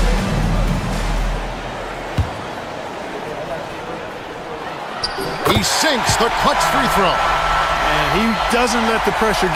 He sinks the clutch free throw. And he doesn't let the pressure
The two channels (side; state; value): both; identical; correlation 1.00